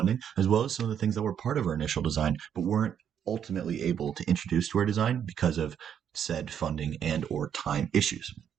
as well as some of the things that were part of our initial design, but weren't ultimately able to introduce to our design because of said funding and or time issues.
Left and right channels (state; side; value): quieter; left; 8.7 dB